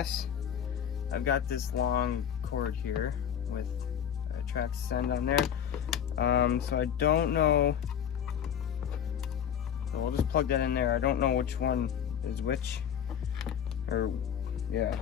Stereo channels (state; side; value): quieter; right; 8.8 dB